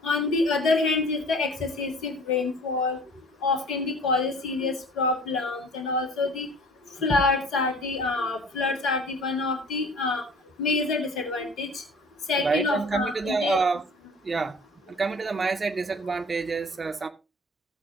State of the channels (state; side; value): normal; both; correlation 0.46